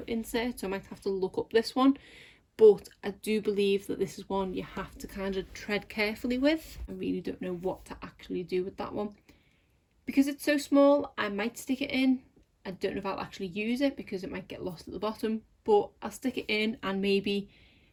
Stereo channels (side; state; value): both; identical; correlation 1.00